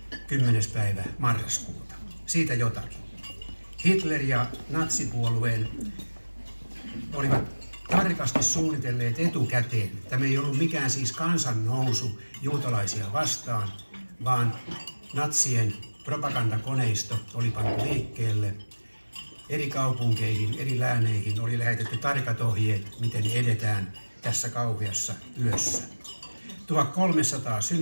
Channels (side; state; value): both; inverted; correlation -1.00